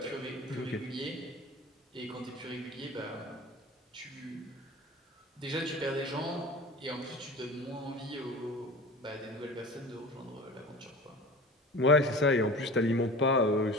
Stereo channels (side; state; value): both; normal; correlation 0.36